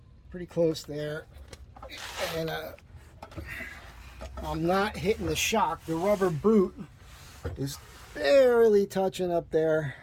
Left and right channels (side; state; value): both; identical; correlation 1.00